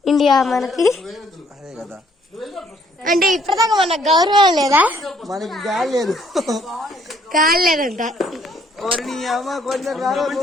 ఇండియా మనకి. అదే కదా, అంటే ఇప్పటిదాకా మనకు గౌరవం లేదా? మనకి గాలి లేదు. గాలి లేదంట. కొంచెం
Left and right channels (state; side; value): normal; both; correlation 0.65